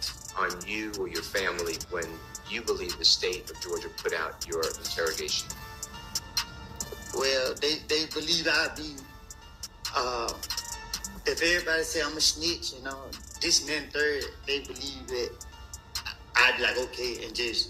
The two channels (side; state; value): both; identical; correlation 1.00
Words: on you or your family when you believe the state of Georgia put out your interrogation? Well, they believe I be, if everybody say I'm a snitch, you know, this and then third, they believe that I'd be like, okay, and